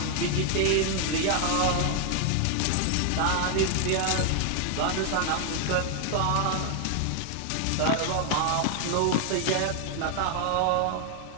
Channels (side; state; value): both; different; correlation 0.00